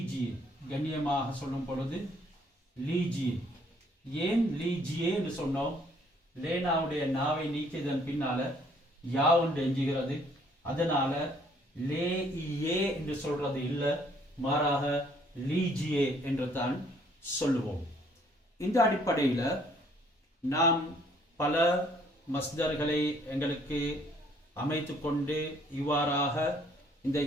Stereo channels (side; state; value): both; normal; correlation 0.63